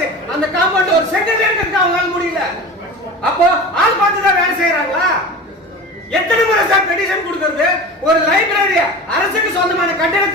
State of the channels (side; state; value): both; normal; correlation 0.33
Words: அந்த காம்பவுண்ட் ஒரு செக்ரட்டரி இருக்கு, அவங்களால முடியல. அப்போ ஆள் பார்த்து தான் வேலை செய்யறாங்களா? எத்தனை முறை சார் பெட்டிஷன் கொடுக்கிறது? ஒரு லைப்ரரி அரசுக்கு சொந்தமான